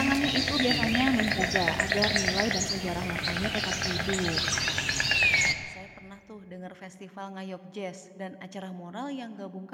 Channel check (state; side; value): identical; both; correlation 1.00